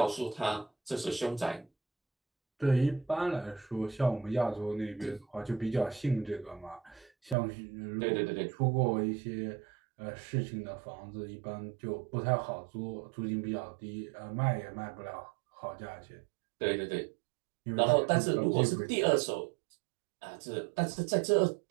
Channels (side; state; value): left; drops out; at 7.4 s